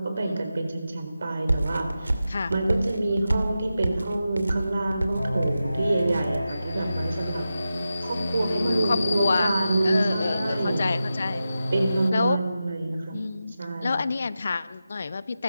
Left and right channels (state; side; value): inverted; both; correlation -0.91